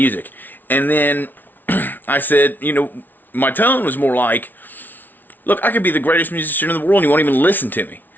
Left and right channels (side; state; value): right; late; 0.087 ms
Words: and then I said, my tone was more like, look, I could be the greatest musician in the world and you won't even listen to me.